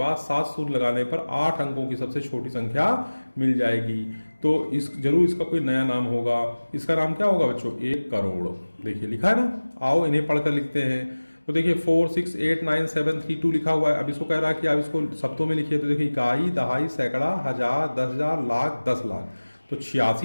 7 सूत्र लगाने पर 8 अंकों की सबसे छोटी संख्या मिल जाएगी। तो इस जरूर इसका कोई नया नाम होगा। इसका नाम क्या होगा बच्चों? 1 करोड़। देखिए लिखा है ना, आओ इन्हें पढ़कर लिखते हैं। तो देखिए 4 6 8 9 7 3 2 लिखा हुआ है। अब इसको कह रहा है कि आप इसको शब्दों में लिखिए। तो देखिए इकाई, दहाई, सैकड़ा, हजार, 10,000, लाख, 10 लाख। तो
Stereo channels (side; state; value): both; inverted; correlation -1.00